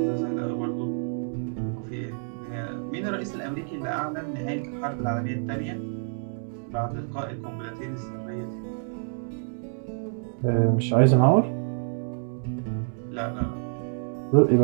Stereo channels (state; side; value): silent; left; 60 dB below the other